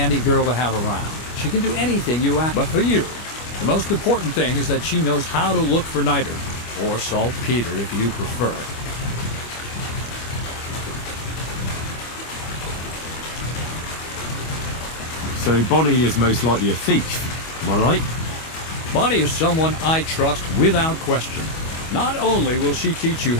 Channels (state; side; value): late; right; 25 ms